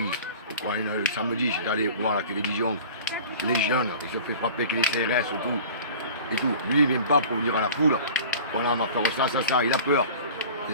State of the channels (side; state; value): both; inverted; correlation -0.41